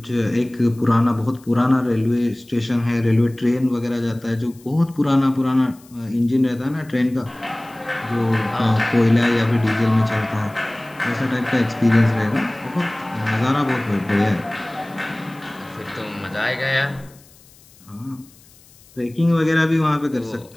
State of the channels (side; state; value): left; noise; hiss, 27 dB below the sound